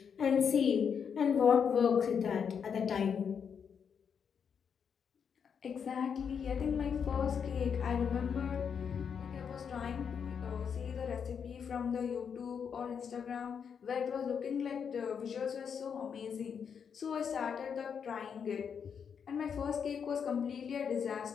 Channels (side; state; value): right; quieter; 7.0 dB